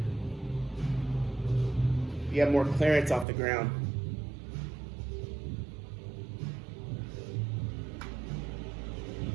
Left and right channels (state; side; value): drops out; left; at 3.2 s